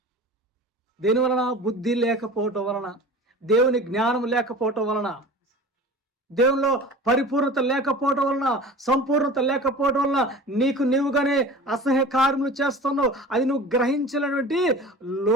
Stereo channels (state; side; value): normal; both; correlation 0.38